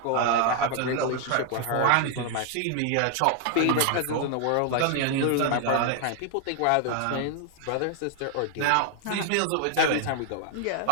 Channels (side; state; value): both; different; correlation 0.00